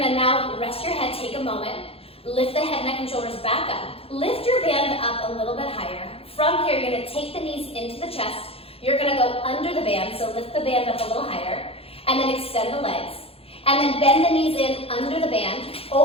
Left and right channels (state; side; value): late; right; 0.28 ms